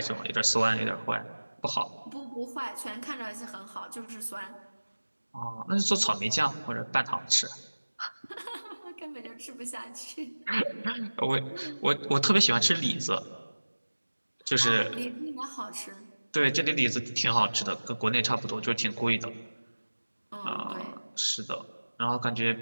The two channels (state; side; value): inverted; both; correlation -1.00